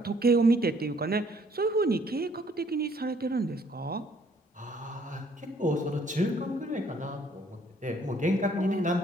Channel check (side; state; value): both; normal; correlation 0.63